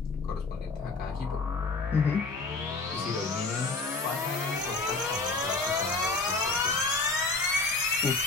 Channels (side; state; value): right; quieter; 3.7 dB